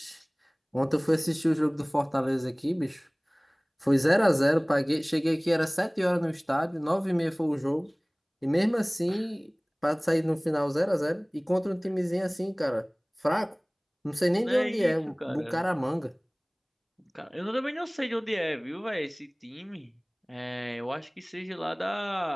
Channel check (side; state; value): both; identical; correlation 1.00